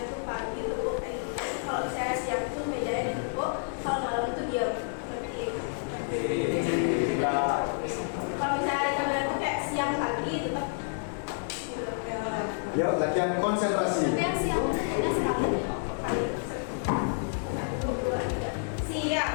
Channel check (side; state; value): right; silent; digital silence